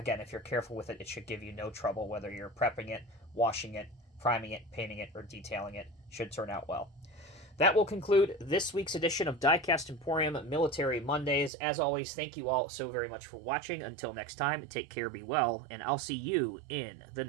if you're careful with it, it should give you no trouble, whether you're prepping it, washing it, priming it, painting it, or detailing it. Should turn out well. That will conclude this week's edition of Diecast Emporium Military Mondays. As always, thank you all so very much for watching. Until next time, take care, be well, and I'll see you in the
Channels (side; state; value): left; drops out; at 11.5 s